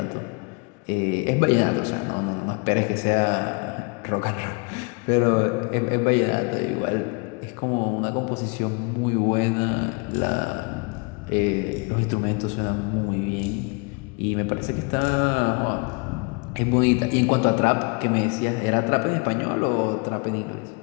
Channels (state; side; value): quieter; right; 32.5 dB